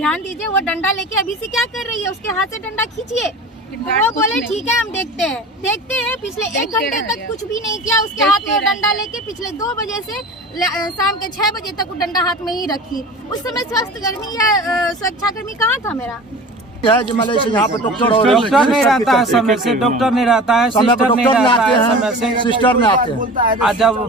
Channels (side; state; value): both; normal; correlation 0.37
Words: दीजिए, वो डंडा लेके अभी से क्या कर रही है, उसके हाथ से डंडा खींचिए। वो बोले ठीक है हम देखते हैं। पिछले 1 घंटे तक कुछ भी नहीं किया, उसके हाथ में डंडा लेके पिछले 2 बजे से शाम के 6 बजे तक वो डंडा हाथ में ही रखी। उस समय स्वास्थ्यकर्मी या सुरक्षाकर्मी कहाँ था मेरा? यहाँ पे डॉक्टर नहीं रहता है समय से, डॉक्टर नहीं रहता है, सिस्टर नहीं रहता है समय से, सिस्टर में आते हैं। और जब